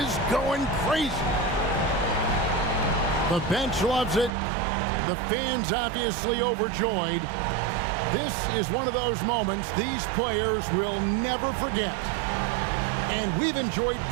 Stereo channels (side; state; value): left; drops out; at 4.4 s